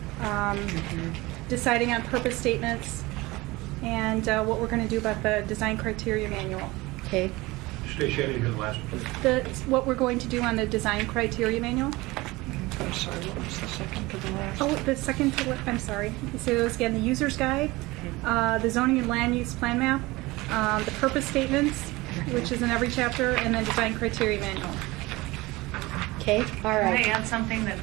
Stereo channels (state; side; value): quieter; left; 21.3 dB